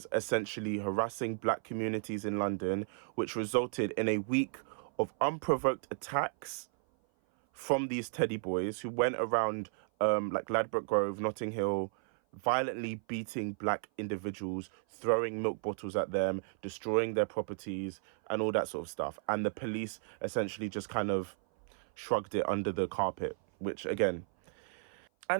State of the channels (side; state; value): left; silent; 55 dB below the other